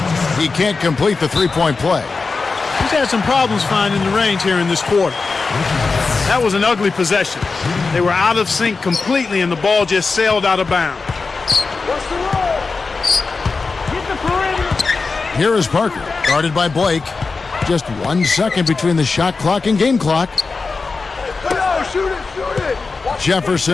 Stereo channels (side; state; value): right; quieter; 4.3 dB